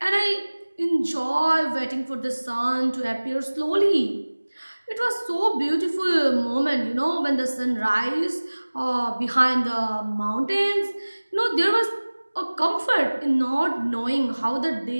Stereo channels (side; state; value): both; inverted; correlation -1.00